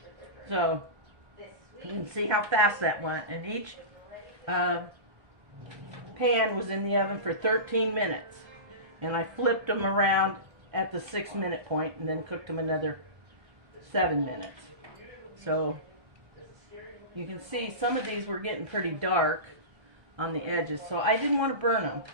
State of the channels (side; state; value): left; late; 1.3 ms